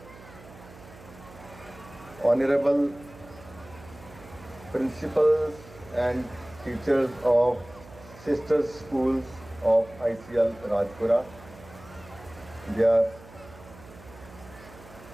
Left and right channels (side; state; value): right; noise; hum, 20 dB below the sound